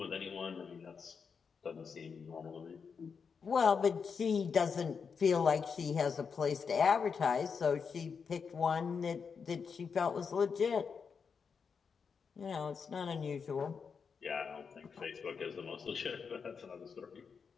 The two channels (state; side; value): quieter; right; 5.9 dB